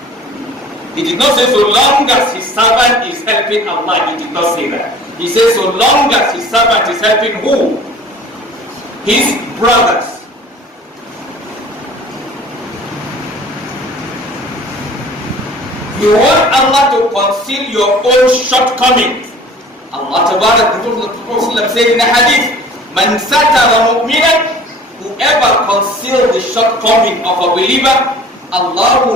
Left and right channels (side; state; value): both; normal; correlation 0.46